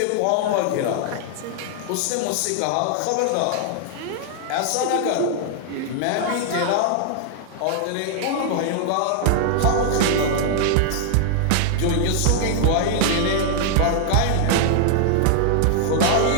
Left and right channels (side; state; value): both; different; correlation 0.00